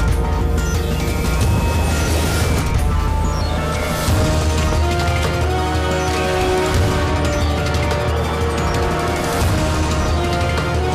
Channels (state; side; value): identical; both; correlation 1.00